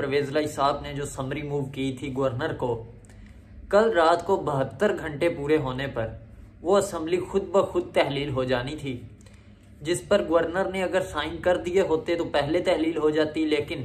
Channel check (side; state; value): both; identical; correlation 1.00